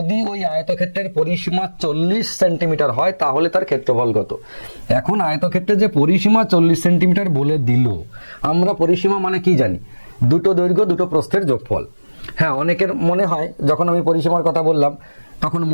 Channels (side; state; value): both; inverted; correlation -1.00